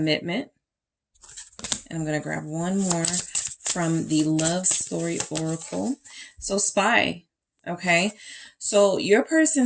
And I'm going to grab one more from the Love Story Oracle. So Spy. Okay, so your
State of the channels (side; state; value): both; identical; correlation 1.00